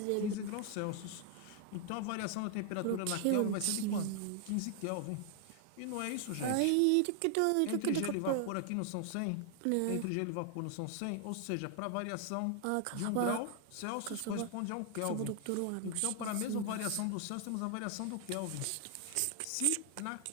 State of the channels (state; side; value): different; both; correlation 0.00